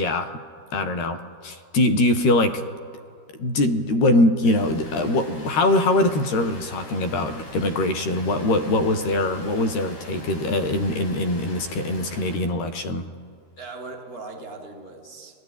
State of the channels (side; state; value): right; late; 13 ms